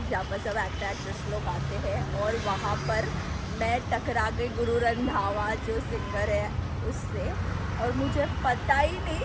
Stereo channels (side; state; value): both; identical; correlation 1.00